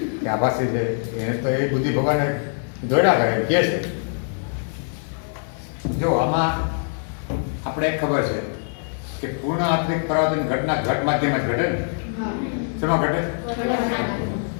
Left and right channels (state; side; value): silent; right; 63 dB below the other